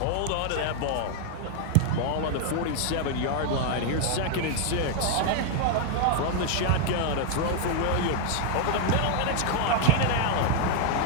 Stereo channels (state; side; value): different; both; correlation 0.00